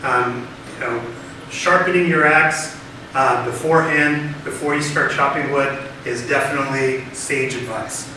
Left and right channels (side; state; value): both; identical; correlation 1.00